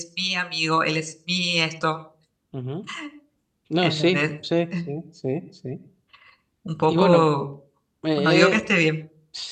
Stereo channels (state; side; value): identical; both; correlation 1.00